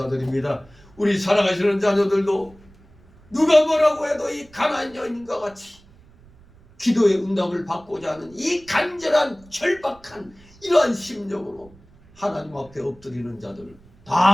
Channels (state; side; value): noise; right; rumble, 26 dB below the sound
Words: 우리 사랑하시는 자녀들도 누가 뭐라고 해도 이 가난안 여인과 같이 기도의 응답을 받고자 하는 이 간절한 절박한 이러한 심정으로 하나님 앞에 엎드리는 자들